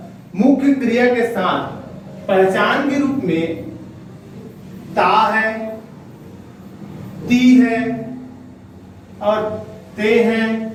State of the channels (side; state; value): both; identical; correlation 1.00